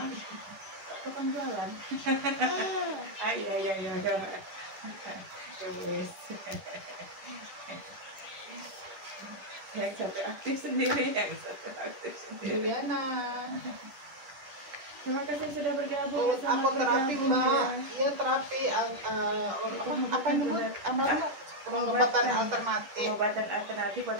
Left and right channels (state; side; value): late; left; 10 ms